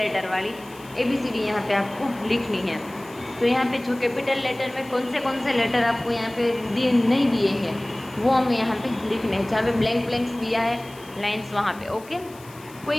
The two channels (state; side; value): noise; left; hiss, 22 dB below the sound